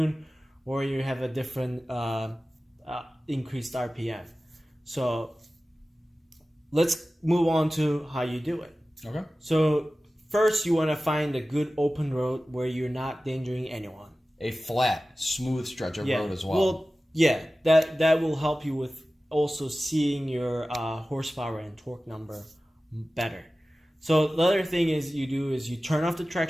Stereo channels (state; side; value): normal; both; correlation 0.96